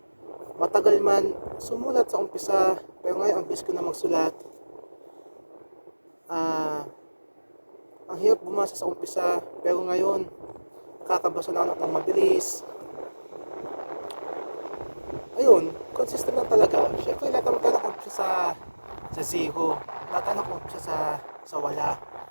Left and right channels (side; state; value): both; inverted; correlation -1.00